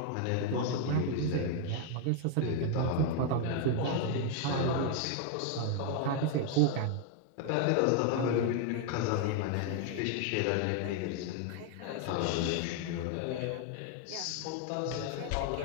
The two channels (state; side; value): different; both; correlation 0.00